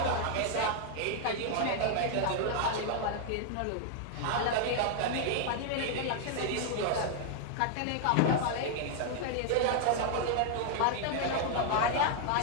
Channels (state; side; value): different; both; correlation 0.00